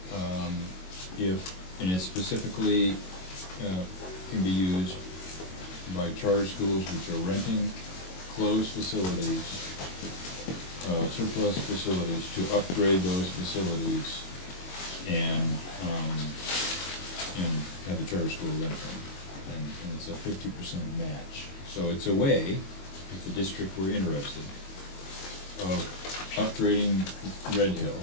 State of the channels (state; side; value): late; right; 22 ms